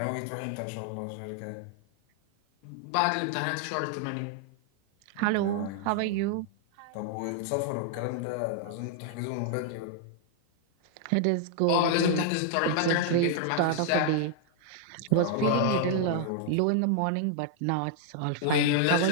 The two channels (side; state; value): both; different; correlation 0.00